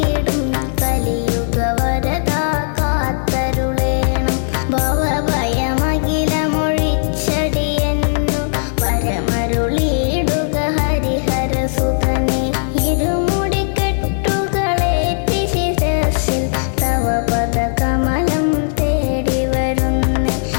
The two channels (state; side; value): silent; right; digital silence